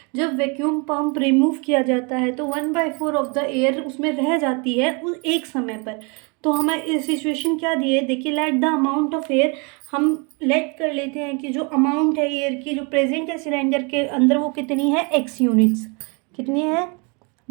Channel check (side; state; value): left; quieter; 32.6 dB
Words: जब vacuum pump remove किया जाता है तो 1/4 ऑफ द एयर उसमें रह जाती है उस एक समय पर। तो हमें सिचुएशन क्या दी है, देखिए, let the amount of air, हम लेट कर लेते हैं कि जो अमाउंट है एयर की जो प्रेजेंट है सिलेंडर के अंदर वो कितनी है, x यूनिट्स। कितनी है,